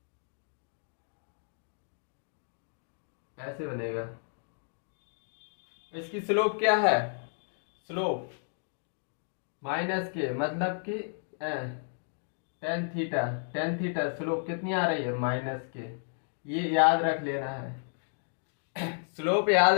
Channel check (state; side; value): silent; right; digital silence